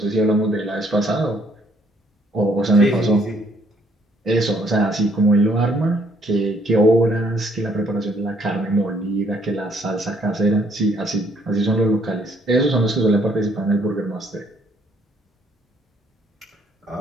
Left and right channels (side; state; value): both; normal; correlation 0.66